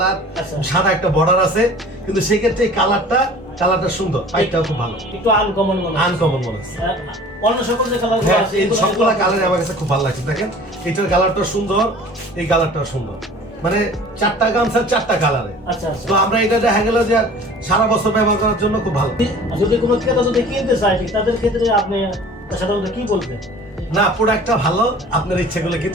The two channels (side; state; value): both; normal; correlation 0.45